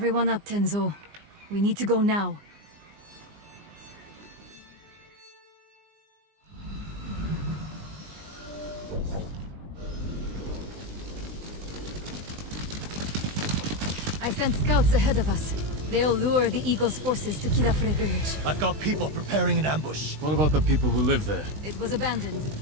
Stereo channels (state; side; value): late; left; 20 ms